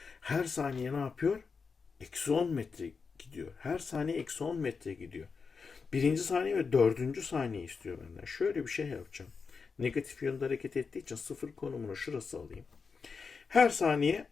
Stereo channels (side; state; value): right; quieter; 5.2 dB